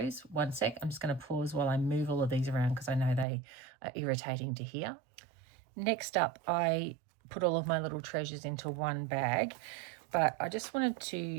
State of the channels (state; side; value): drops out; left; at 3.2 s